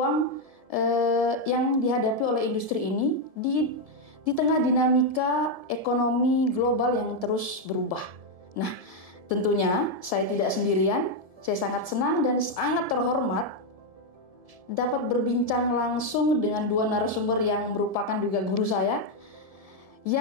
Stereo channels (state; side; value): late; left; 1.7 ms